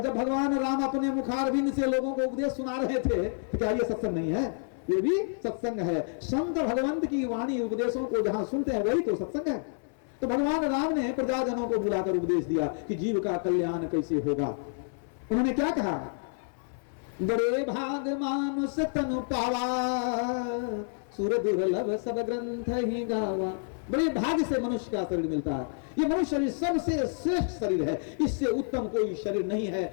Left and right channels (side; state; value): right; silent; 59 dB below the other